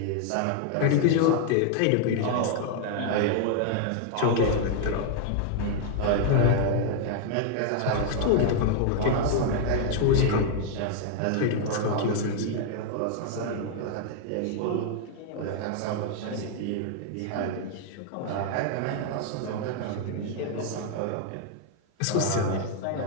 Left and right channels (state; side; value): different; both; correlation 0.00